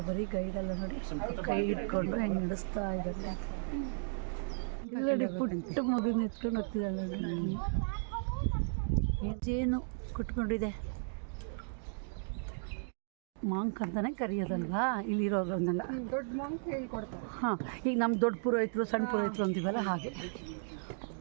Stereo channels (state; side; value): silent; left; digital silence